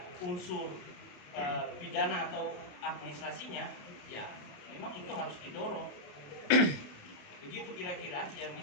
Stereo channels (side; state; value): right; late; 28 ms